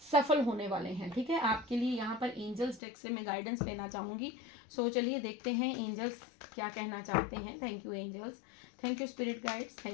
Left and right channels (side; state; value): right; drops out; at 2.8 s